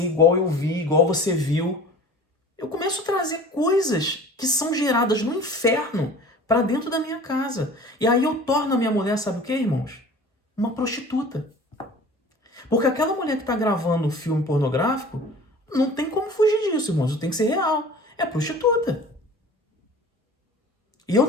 igual eu vi, igual você viu. Eu começo a trazer coisas que são geradas no inferno para dentro da minha casa. E aí eu torno a minha mulher, sabe o que, irmãos? Uma prostituta. Porque aquela mulher que está gravando um filme pornográfico, não tem como fugir disso, irmãos. Tem que ser real. É prostituta. E eu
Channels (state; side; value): normal; both; correlation 0.43